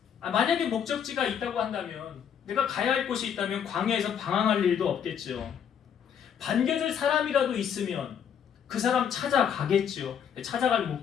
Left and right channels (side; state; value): right; quieter; 8.3 dB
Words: 만약에 목적지가 있다고 한다면 내가 가야 할 곳이 있다면 광야에서 방황할 일도 없겠죠. 반겨줄 사람이라도 있으면 그 사람 찾아가겠죠. 찾아갈